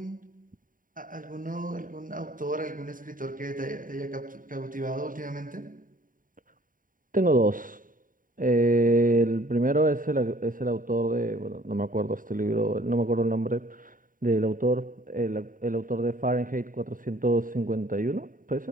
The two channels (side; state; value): left; late; 0.39 ms